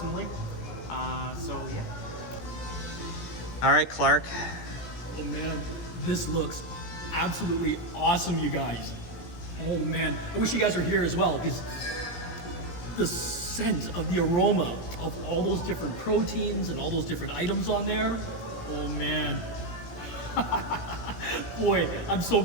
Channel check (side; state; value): right; late; 17 ms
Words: So yeah. All right, Clark. Oh man, this looks absolutely awesome, you guys. Oh man, I wish you guys were here as well, because the scent of the aroma of all those different proteins and all those different items on there. Oh man. Boy, I'm so